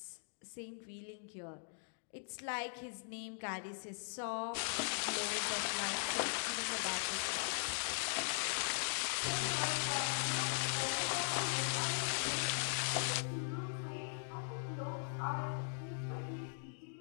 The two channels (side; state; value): right; silent; digital silence